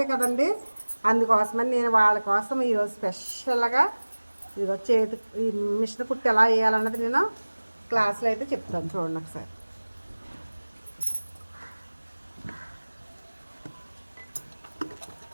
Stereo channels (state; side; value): inverted; both; correlation -1.00